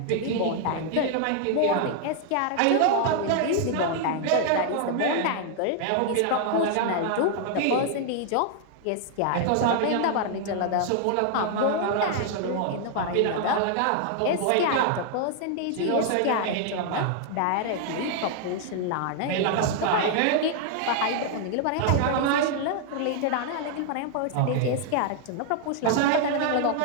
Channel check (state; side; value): different; both; correlation 0.00